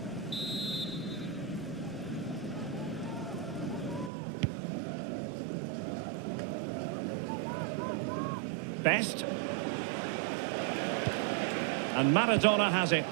Best. And Maradona has it.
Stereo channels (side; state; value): left; drops out; at 4.1 s